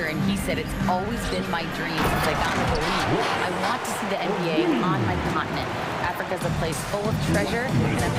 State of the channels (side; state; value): both; identical; correlation 1.00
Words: and he said, "It's always been my dream since I got into the league. I want to see the NBA on my continent. Africa's a place full of treasure, and I'm